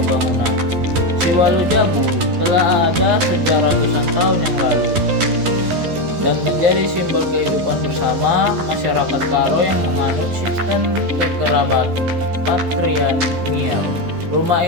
bangunan. Siwalu Jabu telah ada sejak ratusan tahun yang lalu dan menjadi simbol kehidupan bersama masyarakat Karo yang menganut sistem kekerabat patrilineal. Rumah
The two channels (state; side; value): late; left; 12 ms